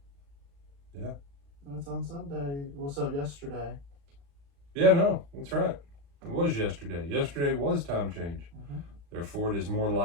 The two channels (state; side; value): late; left; 35 ms